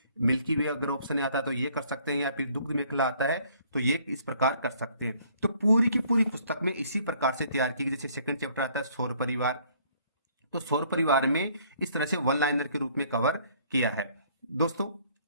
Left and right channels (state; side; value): inverted; both; correlation -0.61